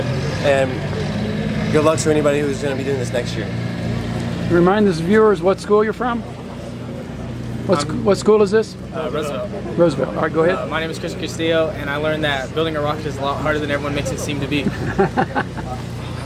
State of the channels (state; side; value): identical; both; correlation 1.00